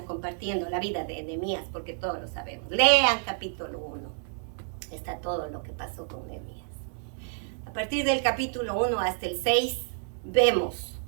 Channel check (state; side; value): silent; left; digital silence